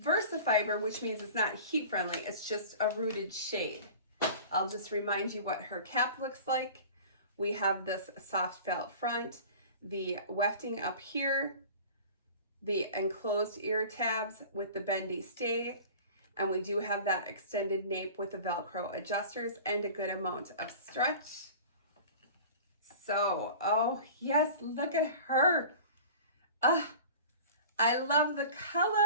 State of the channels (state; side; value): inverted; both; correlation -0.39